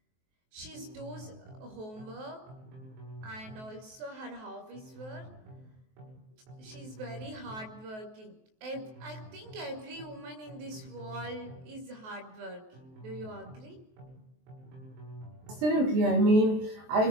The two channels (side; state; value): left; late; 23 ms